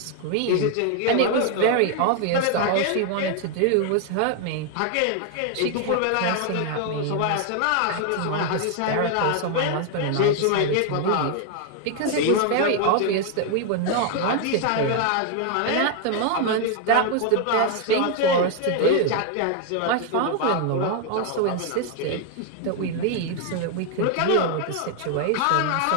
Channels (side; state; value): both; different; correlation 0.00